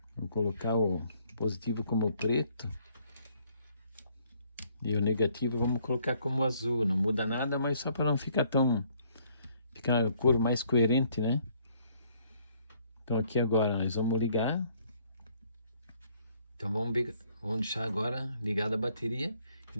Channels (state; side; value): inverted; both; correlation -0.65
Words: Vou colocar o positivo como preto e o negativo vamos colocar como azul, não muda nada, mas só para não ficar ficar a cor mais coerente, né? Então aqui agora nós vamos ligar, então vamos deixar agora ligada a bateria. E